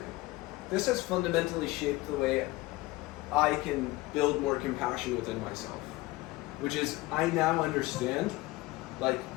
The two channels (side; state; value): right; quieter; 19.8 dB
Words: This has fundamentally shaped the way I can build more compassion within myself. Which is, I now understand, like,